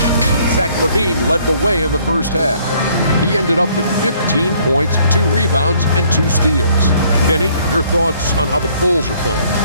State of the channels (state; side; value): inverted; both; correlation -0.62